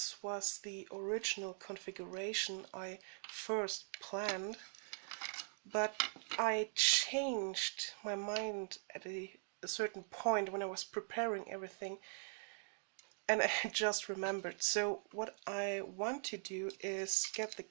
was the original configuration I first planned, but I changed my mind at a certain point when I was preparing everything, and I just remembered. So what I want to do is get the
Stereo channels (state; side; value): silent; left; digital silence